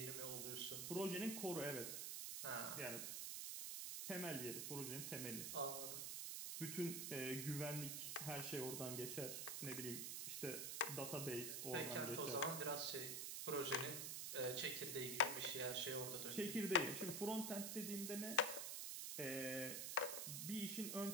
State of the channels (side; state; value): right; noise; hiss, 2 dB below the sound